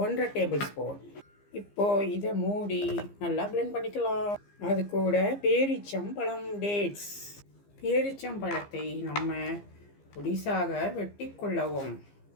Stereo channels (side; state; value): right; late; 15 ms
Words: 1/2 டேபிள் ஸ்பூன். இப்போது இதை மூடி நல்லா பிளெண்ட் பண்ணிக்கலாம். அது கூட பேரிச்சம்பழம் டேட்ஸ், பேரிச்சம்பழத்தை நம்ம பொடிசாக வெட்டி கொள்ளவும்.